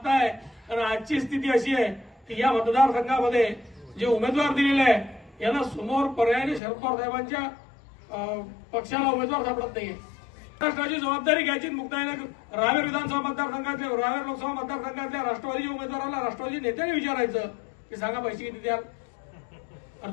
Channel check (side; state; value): right; drops out; at 6.6 s